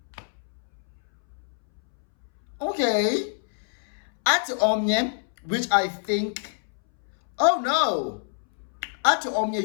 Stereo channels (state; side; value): silent; right; 61 dB below the other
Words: Okay. Ati omnye, which I think, oh no. Ati